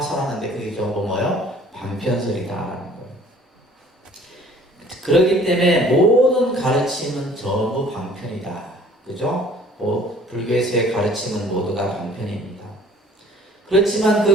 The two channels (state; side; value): normal; both; correlation 0.53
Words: 설하는데 그게 전부 뭐예요? 방편설이다라는 거예요. 그렇기 때문에 모든 가르침은 전부 방편이다. 그죠? 불교에서의 가르침은 모두가 방편입니다. 그렇지만